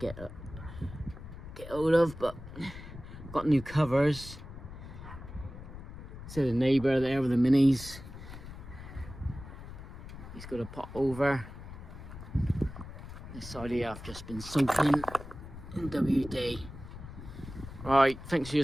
hold of, but got new covers. See the neighbour there with the minis. He's got a pot over. This side here I've just been soaking in WD. Right, thanks for your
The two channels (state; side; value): noise; left; rumble, 13 dB below the sound